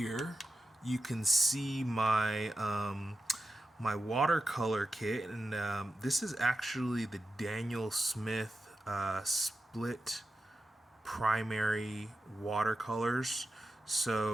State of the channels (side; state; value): both; normal; correlation 0.91